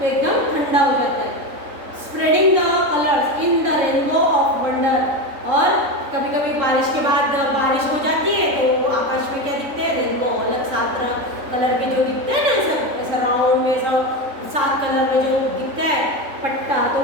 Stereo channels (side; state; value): left; late; 3.6 ms